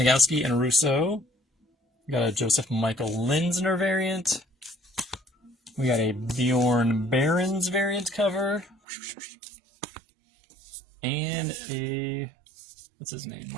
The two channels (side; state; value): left; drops out; at 8.8 s